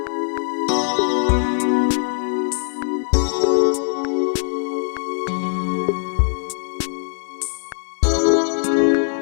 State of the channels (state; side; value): silent; right; digital silence